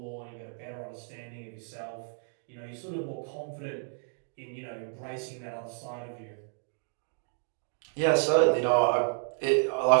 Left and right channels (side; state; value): left; silent; digital silence